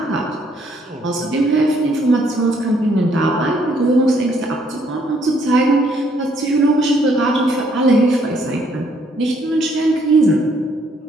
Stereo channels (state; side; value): normal; both; correlation 0.67